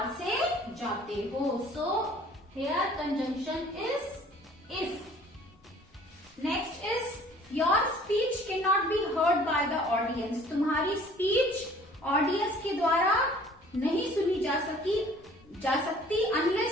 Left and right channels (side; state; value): both; normal; correlation 0.52